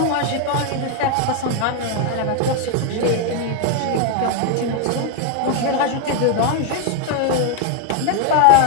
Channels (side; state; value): both; different; correlation 0.01